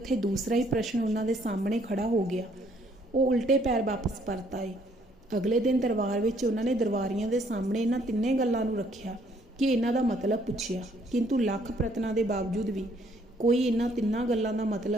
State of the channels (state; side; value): normal; both; correlation 0.65